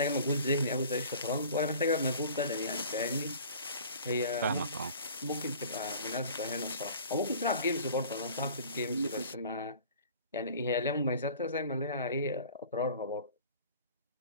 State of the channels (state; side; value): inverted; both; correlation -0.46